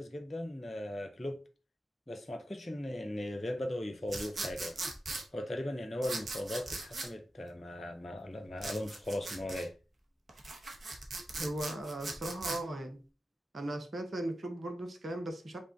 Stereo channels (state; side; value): normal; both; correlation 0.91